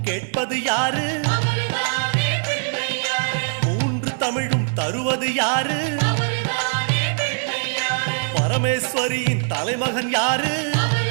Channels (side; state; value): left; silent; digital silence